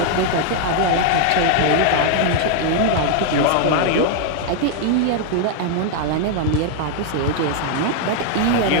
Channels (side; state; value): both; different; correlation 0.00